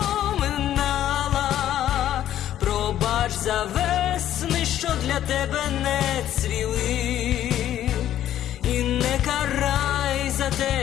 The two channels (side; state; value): right; quieter; 11.8 dB